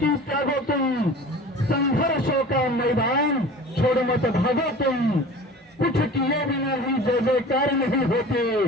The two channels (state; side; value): normal; both; correlation 0.40